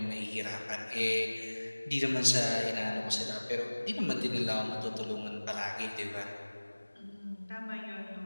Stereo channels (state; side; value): inverted; both; correlation -1.00